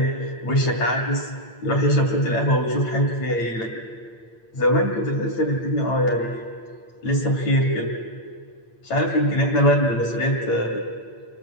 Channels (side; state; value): right; late; 8.8 ms